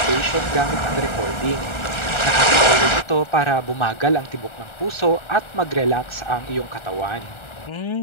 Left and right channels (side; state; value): right; late; 1.4 ms